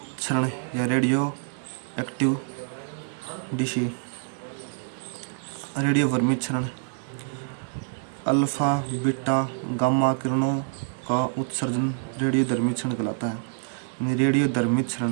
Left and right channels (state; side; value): silent; left; 61 dB below the other